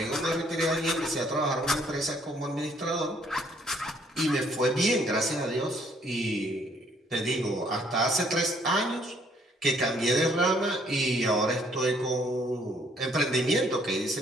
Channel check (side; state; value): both; normal; correlation 0.65